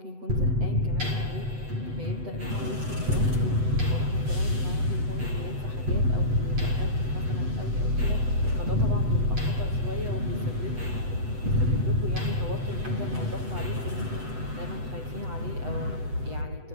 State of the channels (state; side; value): late; left; 8.0 ms